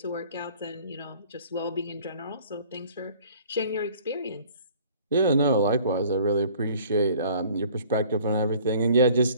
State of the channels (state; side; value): inverted; both; correlation -0.52